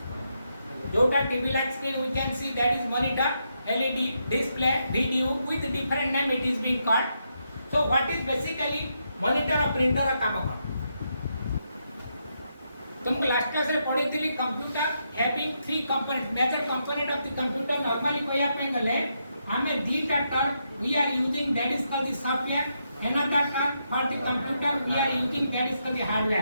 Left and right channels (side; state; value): both; inverted; correlation -0.81